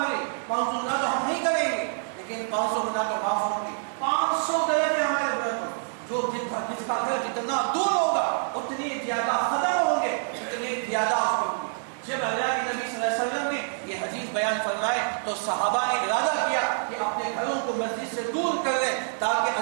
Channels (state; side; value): silent; left; digital silence